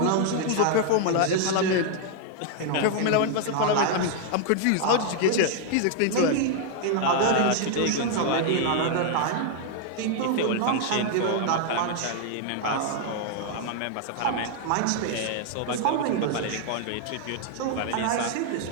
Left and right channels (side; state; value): both; different; correlation 0.00